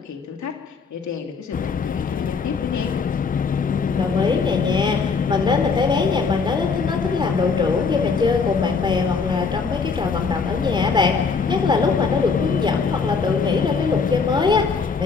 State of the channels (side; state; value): right; quieter; 5.0 dB